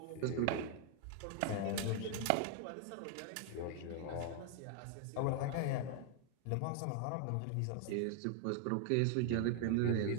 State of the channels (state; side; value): different; both; correlation 0.00